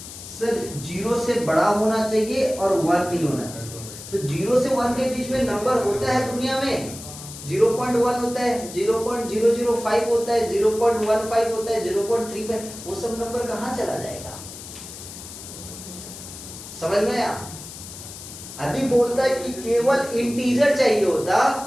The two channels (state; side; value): noise; left; hiss, 13 dB below the sound